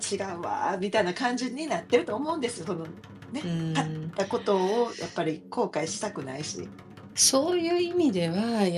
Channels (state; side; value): identical; both; correlation 1.00